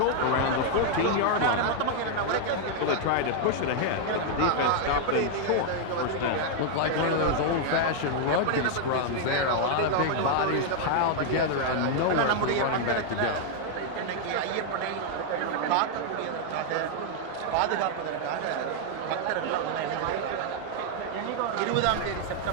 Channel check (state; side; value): different; both; correlation 0.00